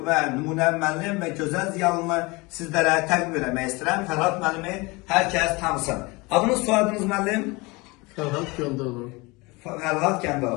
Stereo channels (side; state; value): right; quieter; 24.9 dB